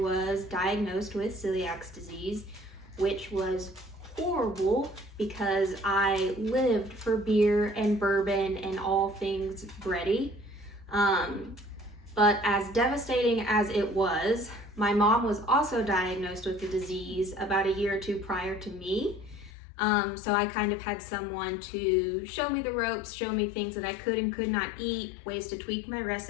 diagnosed with celiac disease, which was horrible because I lived for beer and bourbon and all things bready. But as devastating as it was, my mom was also diagnosed with the disease about a year or two prior to me. So I kind of had someone to show me the ropes, show me things that I could and could not eat, ways to tweak my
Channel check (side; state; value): right; drops out; at 19.5 s